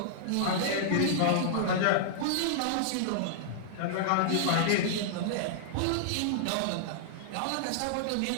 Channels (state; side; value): different; both; correlation -0.01